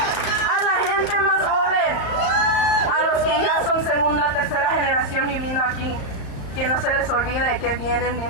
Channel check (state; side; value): late; right; 35 ms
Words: A la gente más joven, a los que ya son segunda, tercera generación viviendo aquí, que no se les olvide que vienen